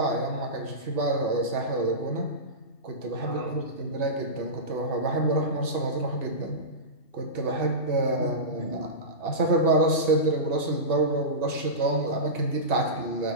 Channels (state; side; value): late; right; 2.7 ms